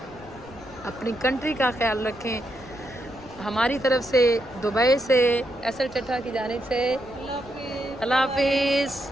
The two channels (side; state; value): left; noise; rumble, 20 dB below the sound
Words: अपनी कंट्री का ख्याल रखें। हमारी तरफ से दुबई से एसएल चट्टा की जानिब से अल्लाह हाफिज़,